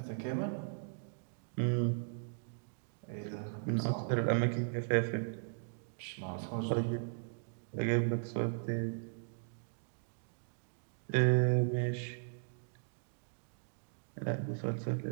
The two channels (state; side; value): silent; left; digital silence